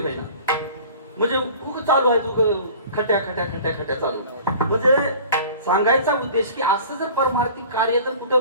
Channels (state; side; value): inverted; both; correlation -0.44